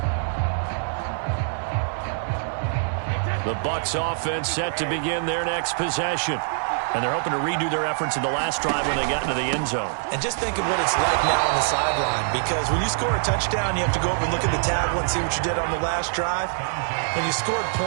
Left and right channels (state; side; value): silent; left; digital silence